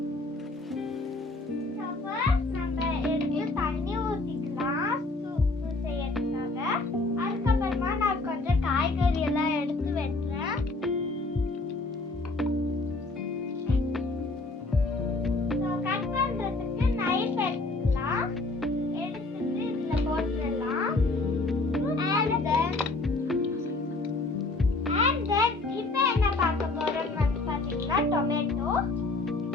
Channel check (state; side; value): quieter; right; 3.2 dB